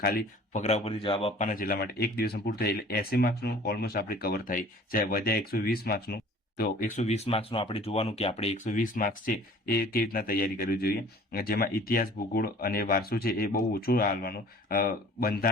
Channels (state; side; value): normal; both; correlation 0.48